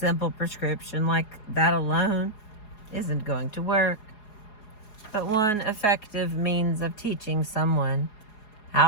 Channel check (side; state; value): right; late; 4.8 ms